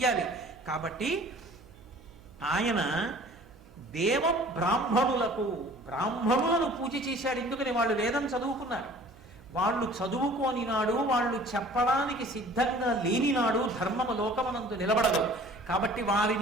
కాబట్టి ఆయన దేవ బ్రాహ్మణులను పూజ చేశాడు. ఎందుకని? వాళ్ళు వేదం చదువుకున్నారు. వాళ్ళు చదువుకోని నాడు, వాళ్ళు చెప్పడానికి సిద్ధంగా లేని నాడు ధర్మము లోకమనందు నిలబడదు. కాబట్టి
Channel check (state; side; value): noise; right; hum, 24 dB below the sound